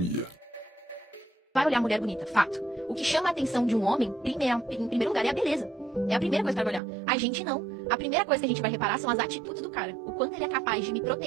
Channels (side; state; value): left; drops out; at 6.8 s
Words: Vai olhar mulher bonita, fato. O que chama a atenção de um homem, em primeiro lugar, é a beleza. É a primeira coisa que vai olhar. A gente não. A primeira coisa que a gente vai reparar são as atitudes do cara. O quanto ele é capaz de me